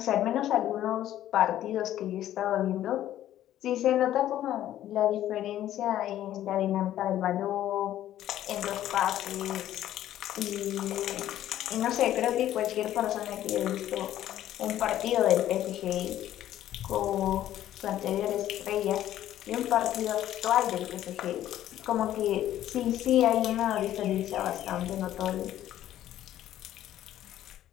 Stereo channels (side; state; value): right; quieter; 12.5 dB